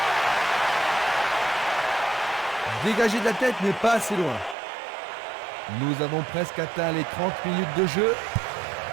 Dégagé de la tête, mais pas assez loin. Nous avons presque atteint les 30 minutes de jeu.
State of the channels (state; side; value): drops out; left; at 4.5 s